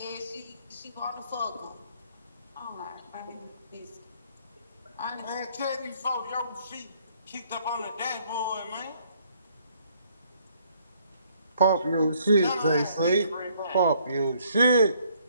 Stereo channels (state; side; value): inverted; both; correlation -0.65